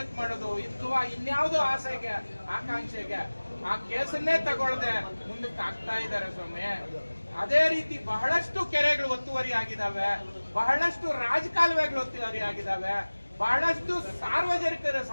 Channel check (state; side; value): inverted; both; correlation -1.00